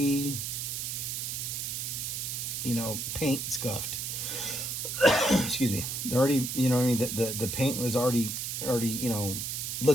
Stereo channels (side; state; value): right; noise; hiss, 3 dB below the sound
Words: paint scuffed. Excuse me. They're already, the paint was already